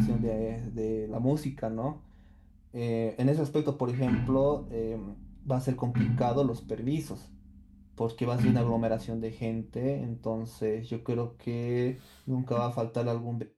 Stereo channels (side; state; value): both; identical; correlation 1.00